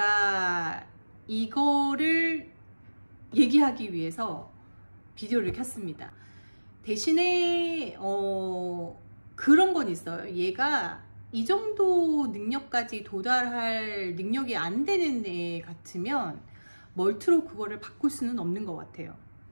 이거를 얘기하기 위해서 비디오를 켰습니다. 대신에 그런 건 있어요. 얘가 이 정도 능력까지 도달할 능력이 안 되는 애 같으면 멀트로 그거를 바꿀 수는 없는 것 같아요.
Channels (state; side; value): inverted; both; correlation -1.00